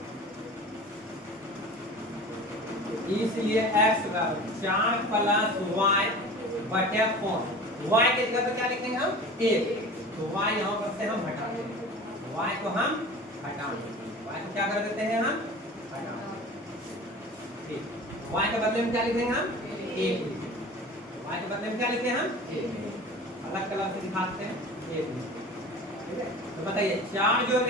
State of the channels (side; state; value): both; normal; correlation 0.38